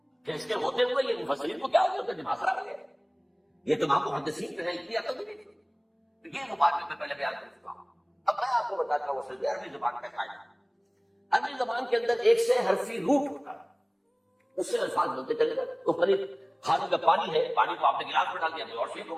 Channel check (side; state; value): both; identical; correlation 1.00